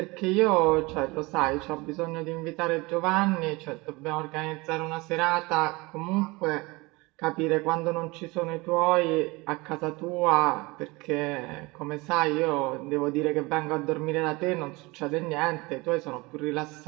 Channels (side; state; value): left; quieter; 23.9 dB